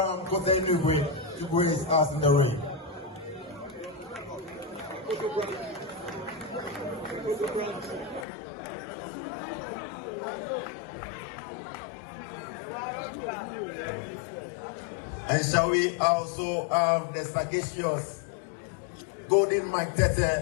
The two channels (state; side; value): drops out; right; at 8.2 s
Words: Kote Nugwe, to grace us in the ring. And shall we also have the sagacious Golden Mike